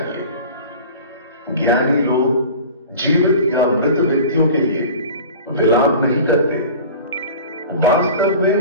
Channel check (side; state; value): both; inverted; correlation -0.39